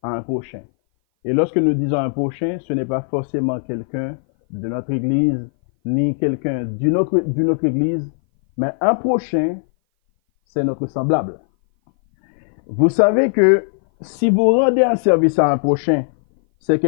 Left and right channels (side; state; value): right; silent; 59 dB below the other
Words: à un prochain. Et lorsque nous disons un prochain, ce n'est pas forcément quelqu'un de notre église, ni quelqu'un d'une autre église, mais un prochain, c'est notre semblable. Vous savez que si vous rendez un service à un prochain, c'est